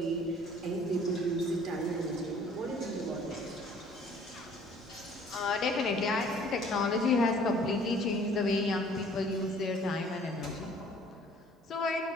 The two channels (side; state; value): both; normal; correlation 0.55